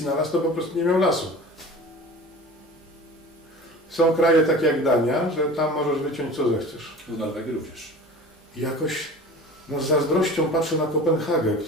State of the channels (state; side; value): normal; both; correlation 0.38